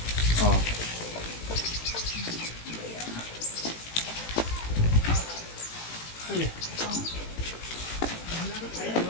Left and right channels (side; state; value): right; late; 18 ms